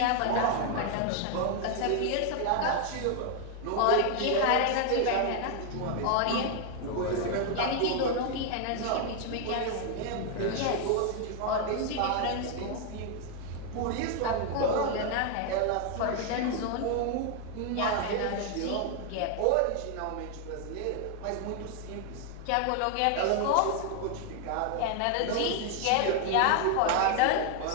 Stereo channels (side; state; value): both; different; correlation 0.00